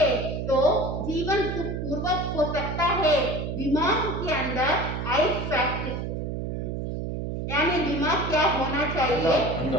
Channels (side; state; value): right; noise; hum, 4 dB below the sound